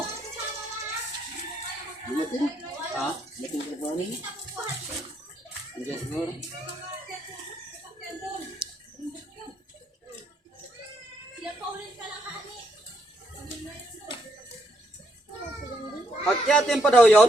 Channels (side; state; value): both; normal; correlation 0.75